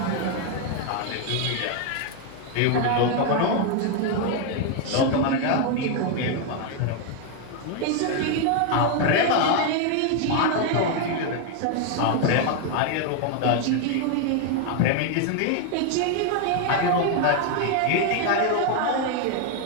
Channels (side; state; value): both; different; correlation 0.01